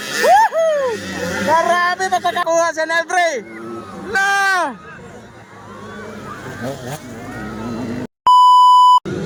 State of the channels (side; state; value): both; identical; correlation 1.00